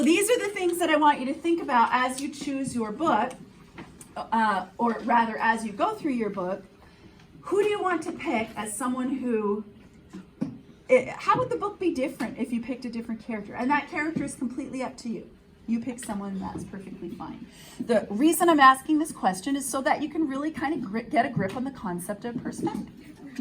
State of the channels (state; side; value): identical; both; correlation 1.00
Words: these are the things that I want you to think about as you choose your book, or rather as you go through your book. Who do you want to pick as someone who, how would the book be different if you picked a different character? And that character is completely up to you. You pick someone, that's perfectly fine. The reason I'm asking this question is so that you can really kind of get a grip on the concept of perspective.